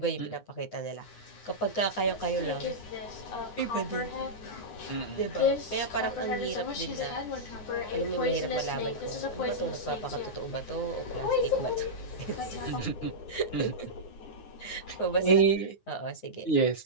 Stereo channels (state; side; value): late; right; 9.6 ms